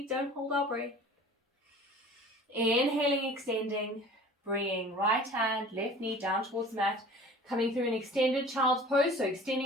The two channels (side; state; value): both; normal; correlation 0.44